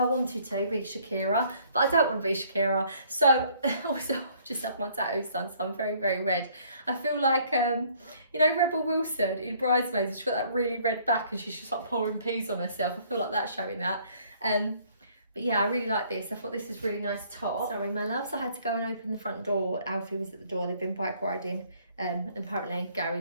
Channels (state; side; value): inverted; both; correlation -0.61